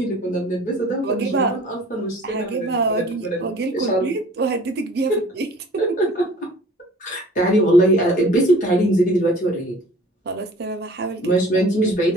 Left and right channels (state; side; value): normal; both; correlation 0.48